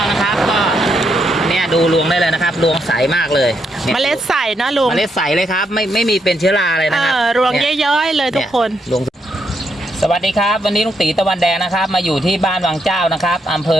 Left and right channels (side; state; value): both; normal; correlation 0.78